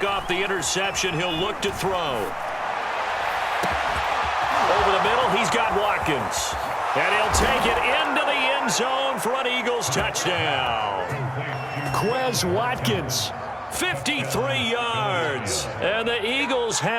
off the interception. He'll look to throw. Over the middle, he's got Watkins. And he'll take it into the end zone for an Eagles touchdown. Quez Watkins, 53 yards. And the Eagles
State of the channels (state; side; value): identical; both; correlation 1.00